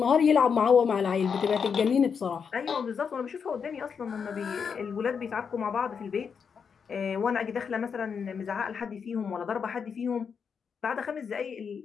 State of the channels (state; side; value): quieter; right; 6.4 dB